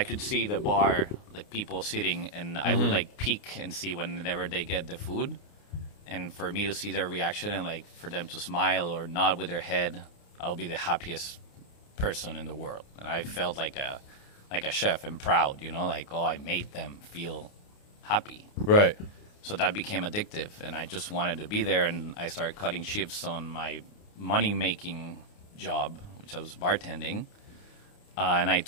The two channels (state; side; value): late; right; 29 ms